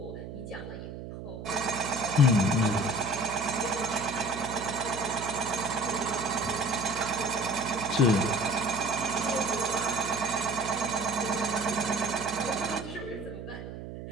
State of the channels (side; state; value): right; noise; hum, 10 dB below the sound